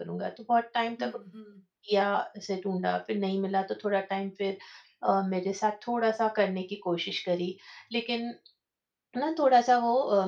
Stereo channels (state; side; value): identical; both; correlation 1.00